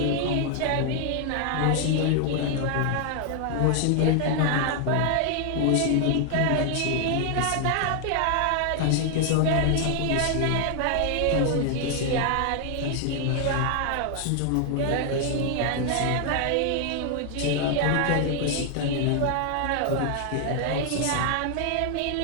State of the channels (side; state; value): both; different; correlation 0.00